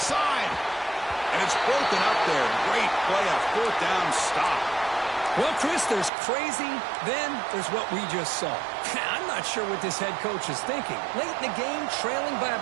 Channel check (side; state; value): left; drops out; at 6.1 s